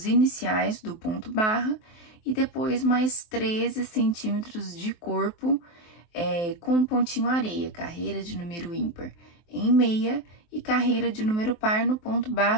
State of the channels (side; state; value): right; late; 23 ms